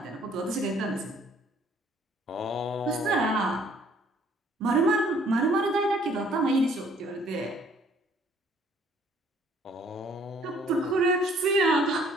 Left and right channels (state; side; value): normal; both; correlation 0.60